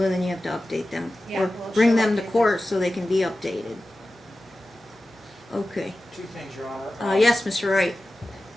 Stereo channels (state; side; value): normal; both; correlation 0.95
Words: then you have to update them. Yeah, Or well, bring she'll them to update them. court so they can be updated. Okay. Two things, Your Honor. Yes, Mr. Wright.